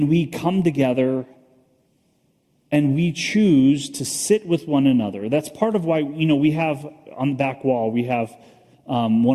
come together and we choose to sit with one another. That's part of why, we have on the back wall, we have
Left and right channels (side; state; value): both; identical; correlation 1.00